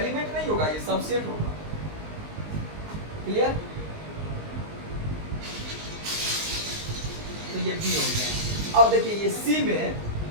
नहीं होगा, ये सबसेट होगा। क्लियर, तो ये बी हो गया। अब देखिए ये सी में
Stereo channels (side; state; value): left; late; 19 ms